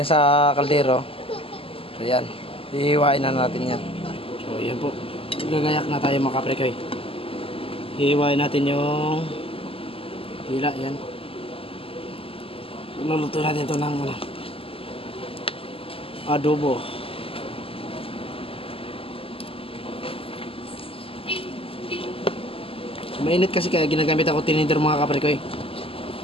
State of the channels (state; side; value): late; right; 0.27 ms